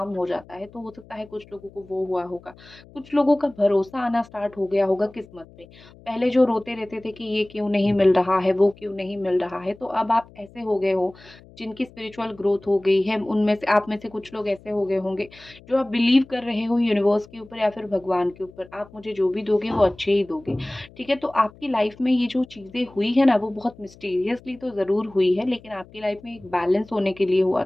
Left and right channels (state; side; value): noise; left; hum, 23 dB below the sound